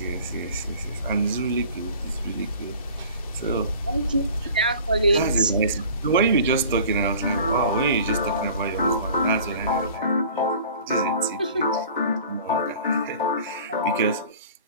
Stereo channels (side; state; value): both; inverted; correlation -0.45